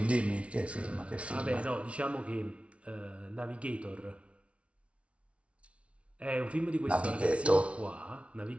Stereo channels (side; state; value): left; late; 0.061 ms